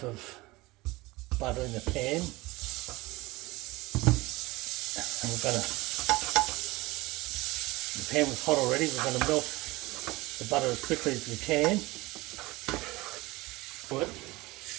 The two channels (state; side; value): quieter; left; 21.2 dB